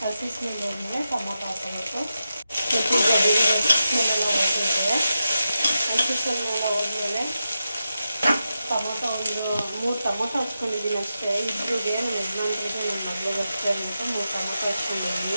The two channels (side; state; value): both; inverted; correlation -0.89